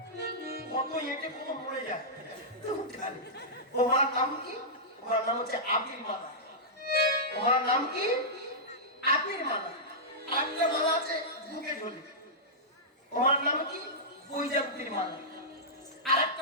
কত এঁটে কত মরে যায়। তোমার নাম কি? তোমার নাম হচ্ছে আবির মালা। তোমার নাম কি? আবির মালা। আরেকটা মালা আছে বুকে ঝুলি, তোমার নাম কি? বৈজান্তির মালা।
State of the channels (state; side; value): normal; both; correlation -0.13